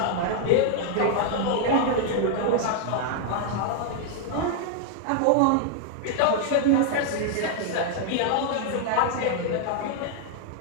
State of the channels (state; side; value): different; both; correlation 0.00